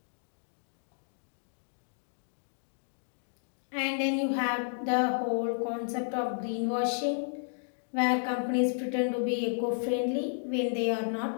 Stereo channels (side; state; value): right; silent; digital silence